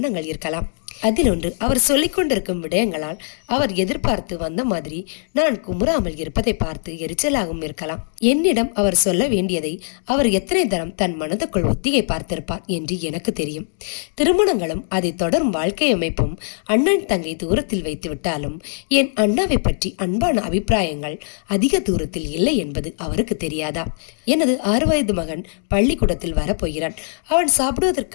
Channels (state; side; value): silent; right; digital silence